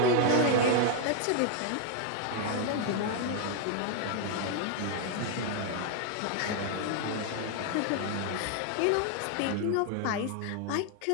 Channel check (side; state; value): both; different; correlation 0.00